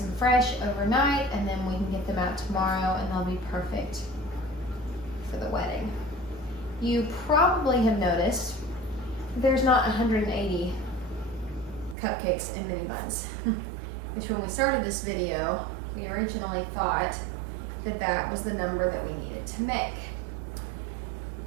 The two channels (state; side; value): drops out; left; at 12.0 s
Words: and fresh overnight, and then we can get them out tomorrow and they'll be perfect for the wedding. You probably have noticed there's not 180 cupcakes and mini buns, which when we started this video, we originally thought that that was the number that we needed to make.